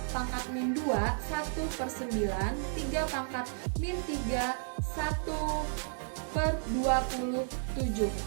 pangkat min 2 1/9. 3 pangkat min 3 1/27.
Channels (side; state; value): left; silent; digital silence